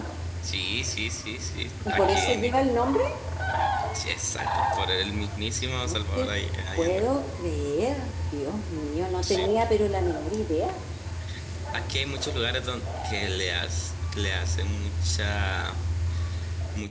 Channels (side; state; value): both; identical; correlation 1.00